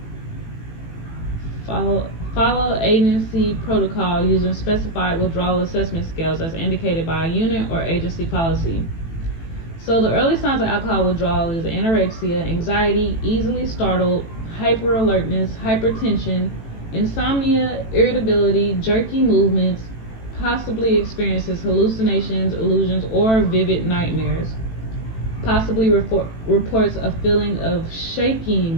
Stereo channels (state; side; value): late; right; 18 ms